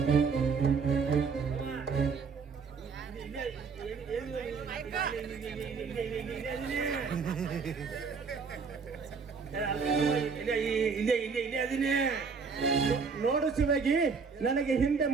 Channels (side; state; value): left; quieter; 5.3 dB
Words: ನೋಡು ಶಿವಾಗಿ, ನನಗೆ ಹಿಂದೆ